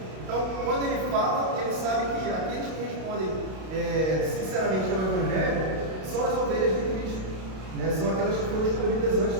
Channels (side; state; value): left; late; 32 ms